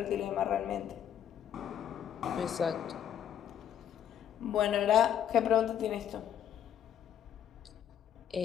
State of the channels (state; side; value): quieter; right; 9.9 dB